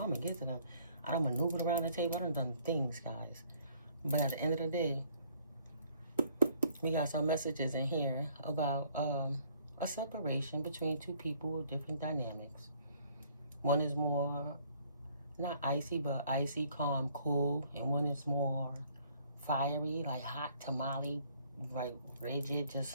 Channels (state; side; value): inverted; both; correlation -0.61